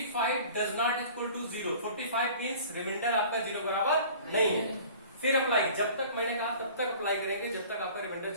does not equal to 0, 45 means remainder आपका 0 बराबर नहीं है, फिर अप्लाई, जब तक मैंने कहा तब तक अप्लाई करेंगे जब तक आपका रिमाइंडर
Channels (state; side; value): inverted; both; correlation -0.45